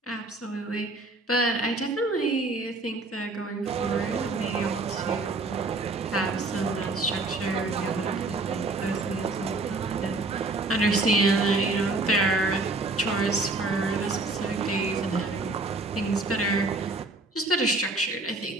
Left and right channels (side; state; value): left; quieter; 3.1 dB